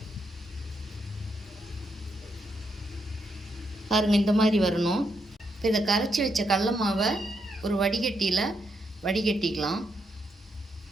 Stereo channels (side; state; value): both; normal; correlation 0.80